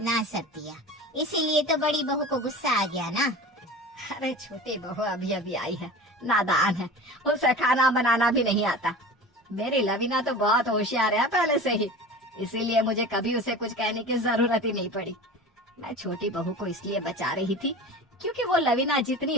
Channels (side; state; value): both; normal; correlation 0.35